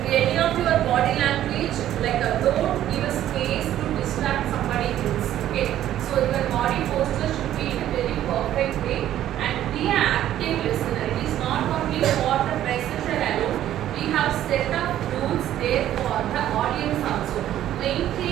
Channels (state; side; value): quieter; left; 12.2 dB